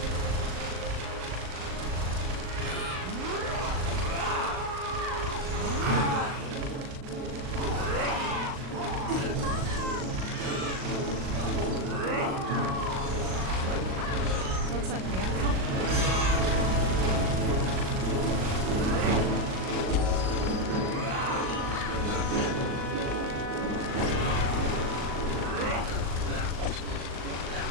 Looks like we have company.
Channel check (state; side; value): late; left; 38 ms